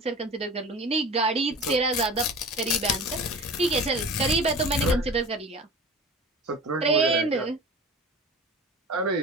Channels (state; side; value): normal; both; correlation 0.36